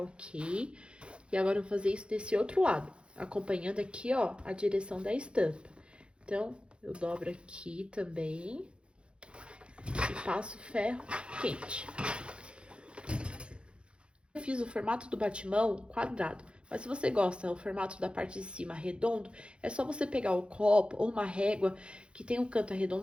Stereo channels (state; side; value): late; left; 0.057 ms